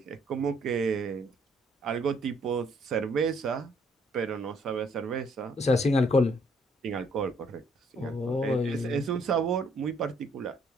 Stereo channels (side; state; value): both; normal; correlation 0.66